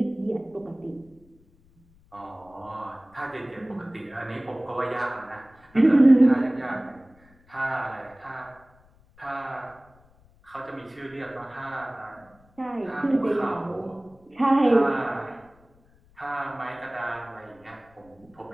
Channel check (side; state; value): left; noise; rumble, 29 dB below the sound